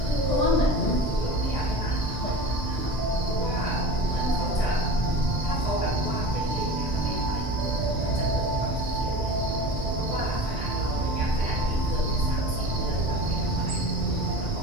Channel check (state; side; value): normal; both; correlation 0.34